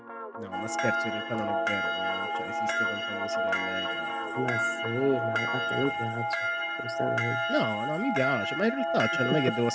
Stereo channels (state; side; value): identical; both; correlation 1.00